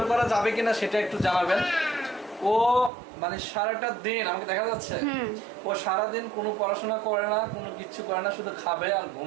করা যাবে কিনা সেটা একটু জানাবেন। ও মানে সারাটা দিন আমাকে দেখা যাচ্ছে, ও সারাদিন কোনো পড়াশোনা করে না, কোনো কিচ্ছু করে না, শুধু খাবে আর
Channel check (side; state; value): left; drops out; at 2.9 s